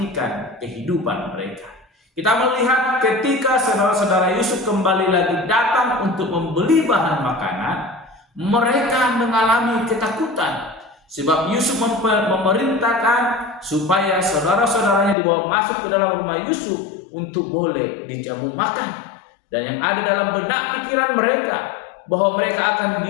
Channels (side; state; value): right; drops out; at 15.2 s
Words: kehidupan mereka. Kita melihat ketika saudara-saudara Yusuf kembali lagi datang untuk membeli bahan makanan, mereka mengalami ketakutan, sebab Yusuf memerintahkan supaya saudara-saudaranya dibawa masuk ke dalam rumah Yusuf untuk boleh dijamu makan. Dan yang ada dalam benak pikiran mereka bahwa mereka akan